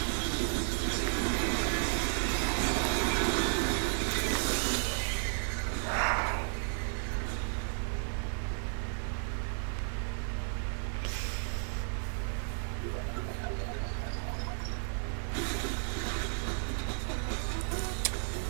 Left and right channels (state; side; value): silent; left; 56 dB below the other